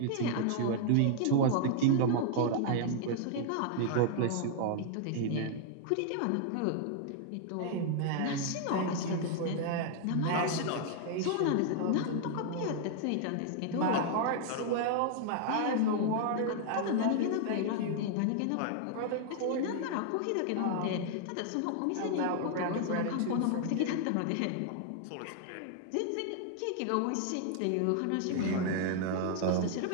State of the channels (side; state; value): both; different; correlation 0.00